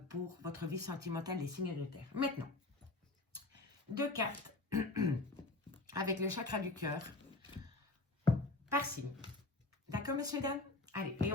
pour votre vie sentimentale des signes de terre. Maintenant, 2 cartes avec le chakra du cœur par signe. D'accord, messieurs, dames? Allez, et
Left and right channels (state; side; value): quieter; right; 3.1 dB